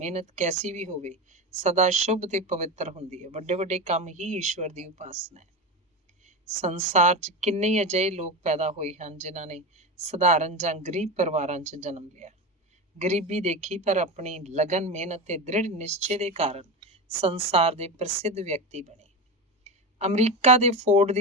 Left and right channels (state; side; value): normal; both; correlation 0.21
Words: ਕੈਸੀ ਵੀ ਹੋਵੇ ਸਦਾ ਸ਼ੁਭ ਤੇ ਪਵਿੱਤਰ ਹੁੰਦੀ ਹੈ। ਵੱਡੇ ਵੱਡੇ ਕੰਮ ਹੀ ਈਸ਼ਵਰ ਦੀ ਉਪਾਸਨਾ ਹੈ। ਸੰਸਾਰ 'ਚ ਕਿੰਨੇ ਹੀ ਅਜਿਹੇ ਲੋਕ ਪੈਦਾ ਹੋਏ ਹਨ ਜਿਨ੍ਹਾਂ ਨੇ ਸਧਾਰਨ ਜਾਂ ਗਰੀਬ ਪਰਿਵਾਰਾਂ 'ਚ ਜਨਮ ਲਿਆ। ਗਰੀਬੀ ਦੇਖੀ ਪਰ ਆਪਣੀ ਲਗਨ, ਮਿਹਨਤ ਤੇ ਦ੍ਰਿੜ ਨਿਸ਼ਚੇ ਦੇ ਕਾਰਨ ਸੰਸਾਰ ਦੇ ਪ੍ਰਸਿੱਧ ਵਿਅਕਤੀ ਬਣੇ। ਅਮਰੀਕਾ ਦੇ ਫੋਰਡ